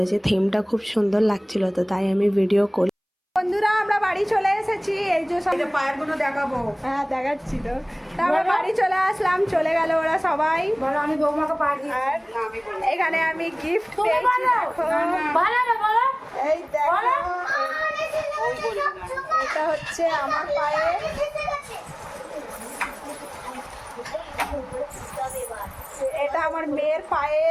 থিমটা খুব সুন্দর লাগছিল, তো তাই আমি ভিডিও করি। বন্ধুরা আমরা বাড়ি চলে এসেছি, এই যে সব পায়ের গুলো দেখাবো। হ্যাঁ দেখাচ্ছি। তো আমরা বাড়ি চলে আসলাম, চলে গেল ওরা সবাই। বলো আমি বৌমাকে পা দিই। আর এখানে আমি গিফট পেয়েছি, দেখো এই দেখো, এটা হচ্ছে আমার পায়ে, এটা আমার মেয়ের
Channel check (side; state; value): both; identical; correlation 1.00